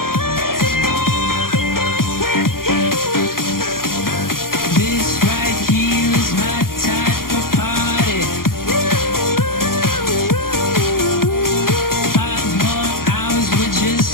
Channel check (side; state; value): right; late; 0.92 ms